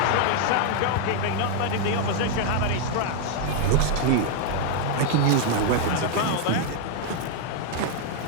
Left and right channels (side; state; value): both; different; correlation 0.00